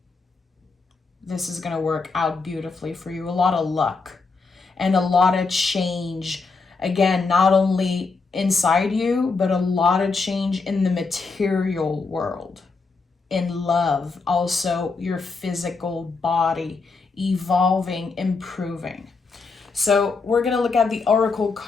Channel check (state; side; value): quieter; right; 4.3 dB